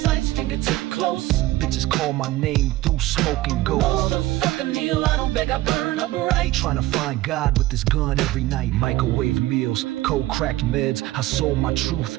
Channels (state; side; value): quieter; left; 16.7 dB